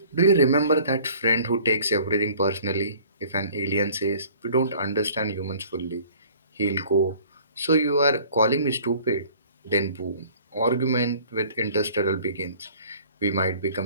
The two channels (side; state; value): both; inverted; correlation -0.51